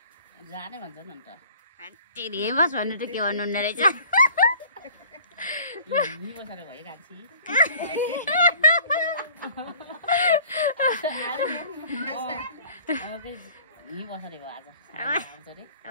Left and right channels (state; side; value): inverted; both; correlation -0.50